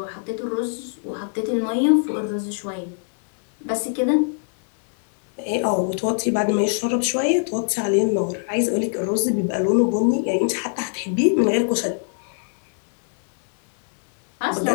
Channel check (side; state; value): right; silent; 64 dB below the other